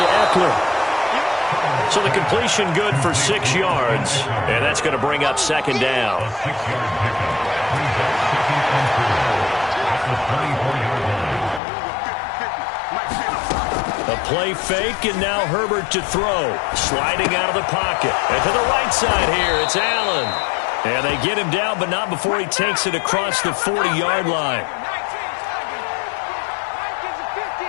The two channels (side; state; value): right; drops out; at 11.6 s